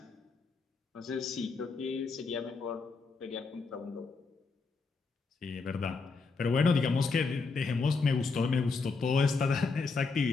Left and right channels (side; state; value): right; quieter; 4.4 dB